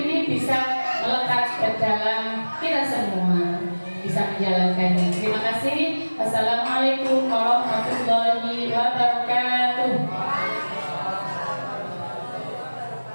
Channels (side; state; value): both; inverted; correlation -1.00